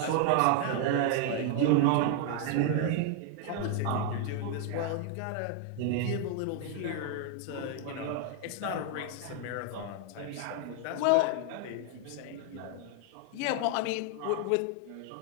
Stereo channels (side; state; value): both; different; correlation 0.00